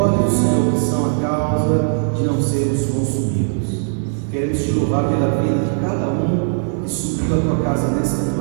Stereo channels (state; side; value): silent; left; digital silence